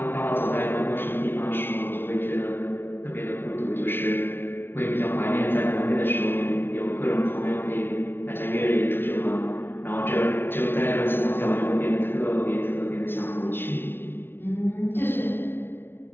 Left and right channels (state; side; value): late; right; 0.11 ms